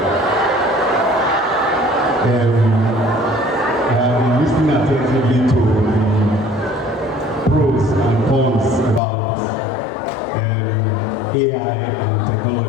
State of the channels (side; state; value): right; drops out; at 9.0 s